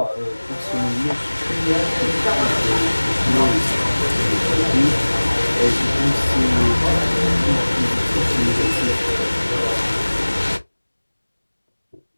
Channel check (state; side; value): inverted; both; correlation -1.00